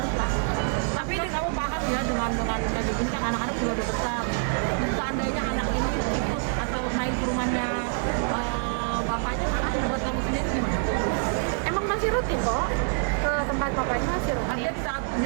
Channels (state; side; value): silent; left; 60 dB below the other